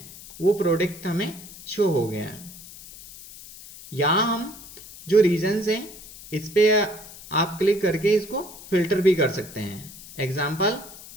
वो प्रोडक्ट हमें शो हो गया। यहाँ हम जो रीजन्स हैं इस पे आप क्लिक करके इसको फिल्टर भी कर सकते हैं। एग्जाम्पल,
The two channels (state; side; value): noise; left; hiss, 17 dB below the sound